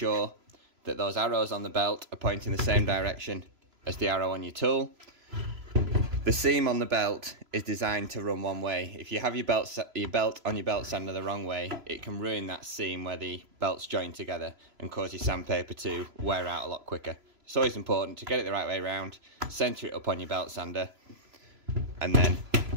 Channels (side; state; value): left; late; 3.0 ms